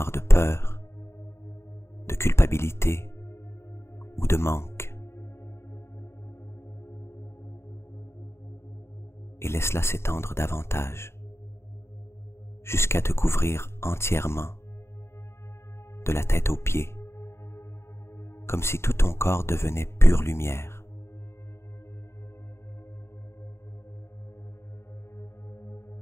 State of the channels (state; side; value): late; right; 0.12 ms